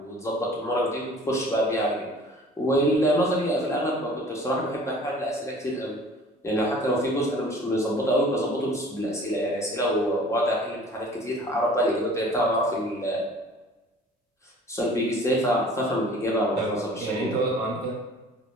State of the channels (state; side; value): normal; both; correlation 0.48